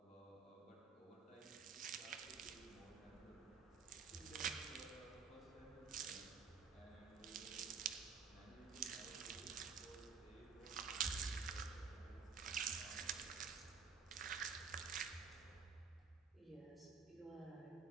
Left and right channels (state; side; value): quieter; left; 5.7 dB